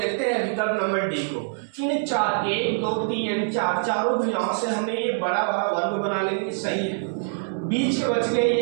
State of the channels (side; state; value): left; silent; 62 dB below the other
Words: हैं विकल्प नंबर डी को। इन 4 1, 2, 3 एंड 4 चारों भुजाओं से हमने ये बड़ा वाला वर्ग बना लेंगे, सही है। बीच के बच गए